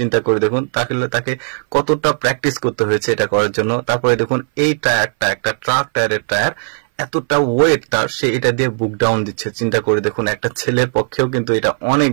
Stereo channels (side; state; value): left; silent; 62 dB below the other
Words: করে দেখুন তাকে কতটা প্র্যাকটিস করতে হয়েছে এটা করার জন্য। তারপরে দেখুন এই টায়ারটা একটা ট্রাক টায়ারের টায়ার, এতটা ওয়েট তার, সে এটা দিয়ে বুক ডাউন দিচ্ছে। চিন্তা করে দেখুন একটা ছেলের পক্ষেও কিন্তু এটা অনেক